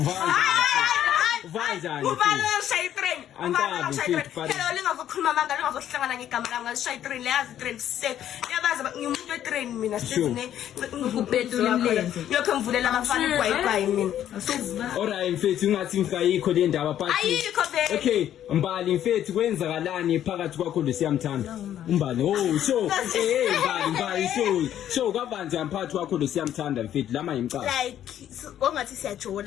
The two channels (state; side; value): quieter; right; 11.0 dB